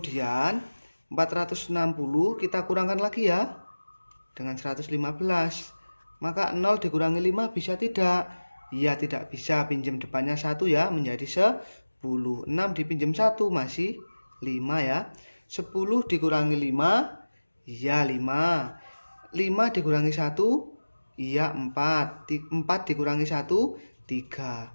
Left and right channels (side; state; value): both; inverted; correlation -1.00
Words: 460 kita kurangkan lagi ya dengan 115. Maka 0 dikurangi 5 bisa tidak? Iya tidak bisa, pinjam depannya 1 ya menjadi 10. 6 dipinjam 1 masih 5 ya. 10 dikurangi 5, iya 5. 5 dikurangi 1, iya 4. 4 dikurangi 1,